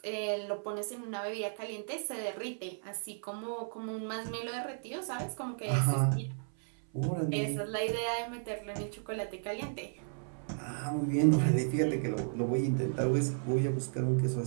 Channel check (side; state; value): left; silent; 55 dB below the other